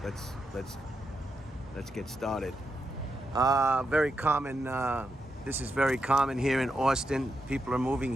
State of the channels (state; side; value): normal; both; correlation 0.85